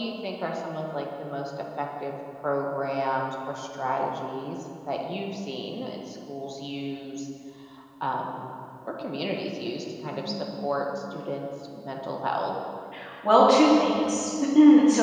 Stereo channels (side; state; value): both; identical; correlation 1.00